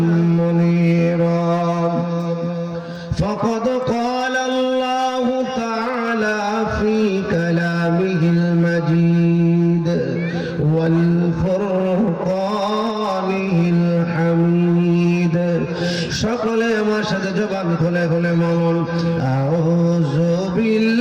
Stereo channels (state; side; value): identical; both; correlation 1.00